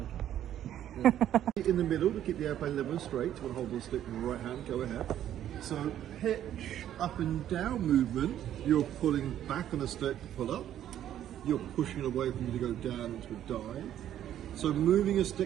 In the middle to keep the airplane level and straight. You want to hold the stick in the right hand, go ahead. So pitch up and down movement, you're pulling back on the stick to pull up. You're pushing it away from you to go down into a dive. So moving a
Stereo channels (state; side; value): quieter; left; 11.2 dB